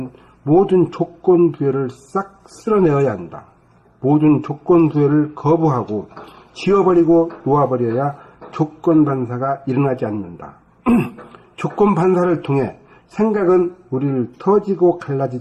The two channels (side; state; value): both; identical; correlation 1.00